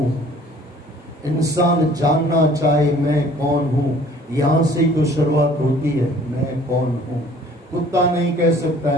इंसान जानना चाहे मैं कौन हूं, यहां से ही तो शुरुआत होती है, मैं कौन हूं। कुत्ता नहीं कह सकता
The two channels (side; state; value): both; normal; correlation 0.53